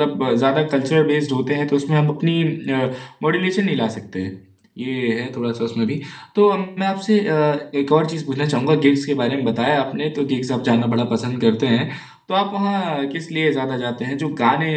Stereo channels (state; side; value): identical; both; correlation 1.00